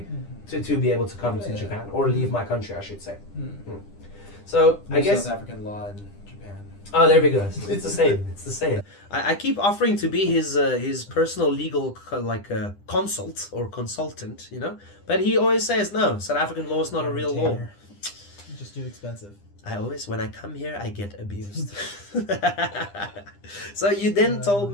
to be able to come to Japan, or leave my country, I should say. So I guess South African law in Japan. Oh, there we go. It's the same. It's the same. I keep offering to be his personal legal consult or consultant, but he always says no. South African law is not a real law. Just too expensive. When I come here, I get abused. So you then told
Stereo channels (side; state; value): right; late; 10 ms